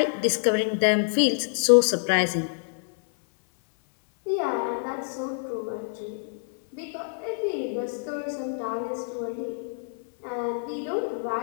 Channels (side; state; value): right; silent; 59 dB below the other